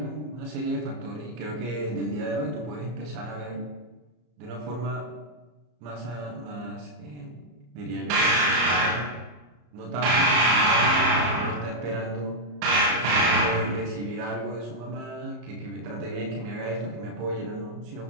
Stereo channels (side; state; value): left; late; 34 ms